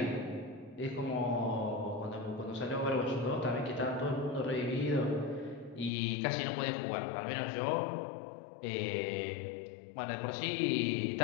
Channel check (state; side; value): drops out; right; at 5.9 s